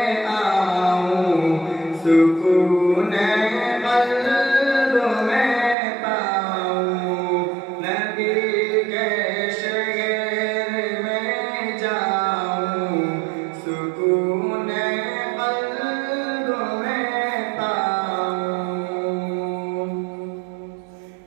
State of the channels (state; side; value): drops out; left; at 5.8 s